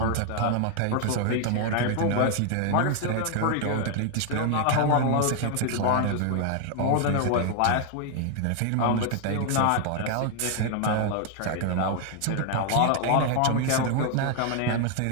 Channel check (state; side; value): different; both; correlation 0.00